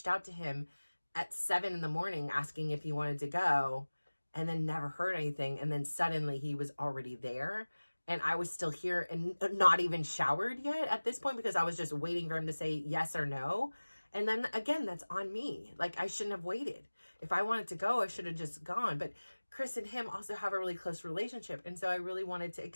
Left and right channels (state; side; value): inverted; both; correlation -1.00